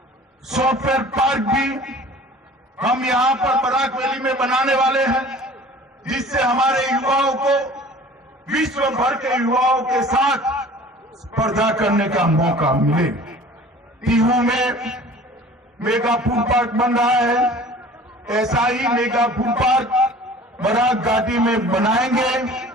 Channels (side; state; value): both; normal; correlation 0.46